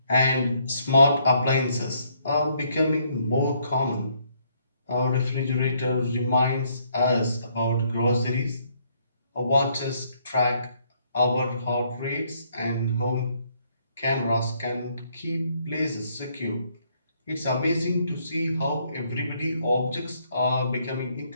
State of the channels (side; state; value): both; inverted; correlation -0.69